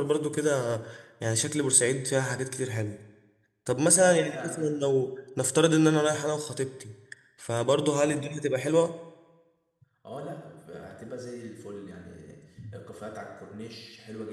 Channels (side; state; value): both; identical; correlation 1.00